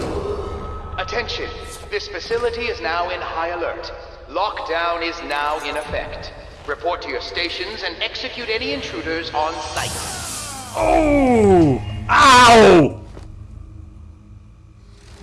Attention! This facility is now in high alert. Lockdown is now in effect. Report to your stations and execute any intruders on site. Oh! Ow!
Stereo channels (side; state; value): both; identical; correlation 1.00